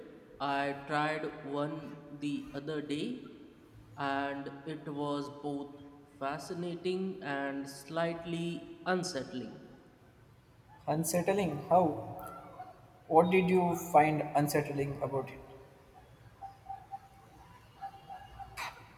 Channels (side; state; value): both; identical; correlation 1.00